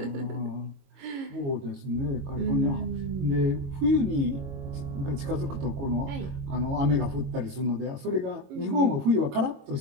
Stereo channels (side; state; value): left; late; 22 ms